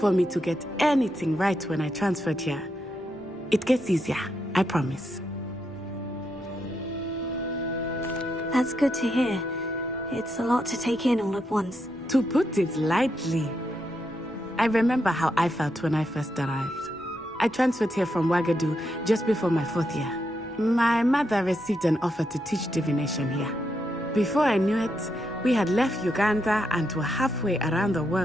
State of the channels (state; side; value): normal; both; correlation 0.82